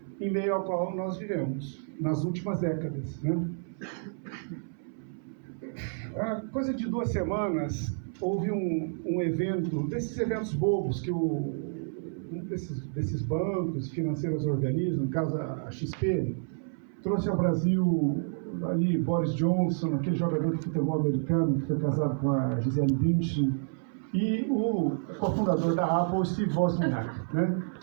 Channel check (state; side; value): silent; left; 58 dB below the other